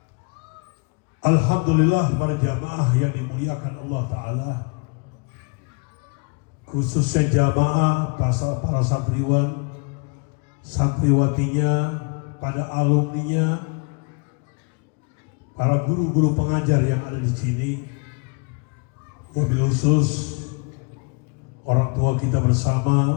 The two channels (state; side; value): quieter; right; 34.7 dB